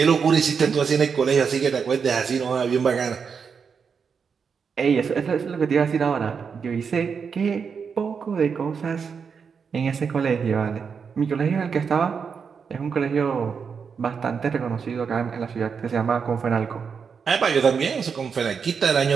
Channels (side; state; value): left; quieter; 6.1 dB